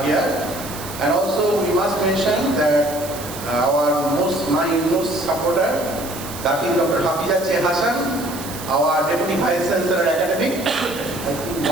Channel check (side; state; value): right; noise; hiss, 12 dB below the sound